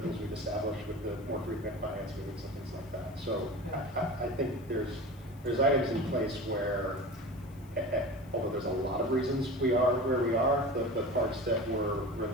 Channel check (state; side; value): noise; left; hiss, 27 dB below the sound